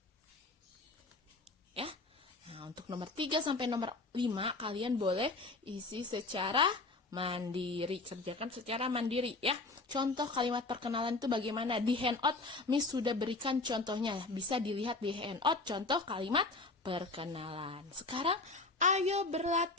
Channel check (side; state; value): right; quieter; 3.4 dB